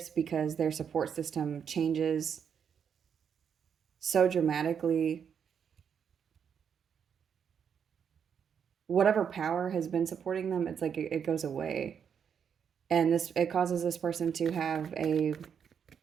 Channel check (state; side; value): quieter; left; 7.5 dB